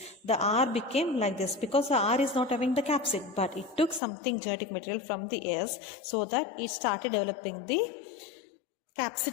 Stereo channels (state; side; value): drops out; right; at 4.0 s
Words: The R became like this because the R is not having the capsid, but it took something genetic material from the S so that it started developing the